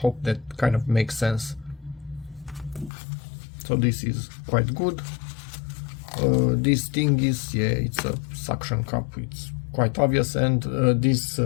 that kind of makes sense. So this is quite good. This thing is, yeah, it's a suction cup, it's quite obvious, and this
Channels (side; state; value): right; drops out; at 2.9 s